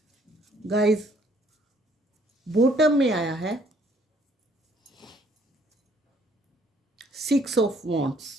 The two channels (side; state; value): both; normal; correlation 0.64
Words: Guys, bottom में आया है 6 ऑफ वॉन्ड्स।